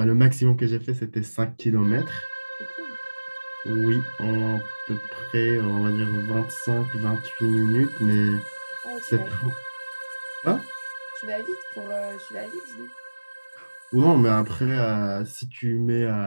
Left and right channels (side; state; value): both; inverted; correlation -1.00